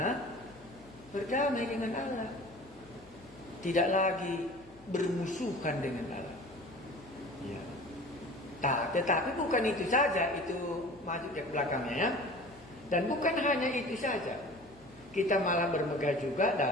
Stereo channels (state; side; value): noise; left; hum, 25 dB below the sound